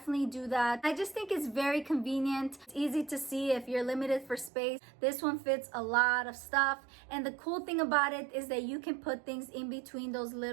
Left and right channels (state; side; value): drops out; left; at 4.5 s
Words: do that. I just think it's very convenient. It's easy to see if you're limited for space. This one fits a lot of stuff, and the cool thing about it is that you can put things in between those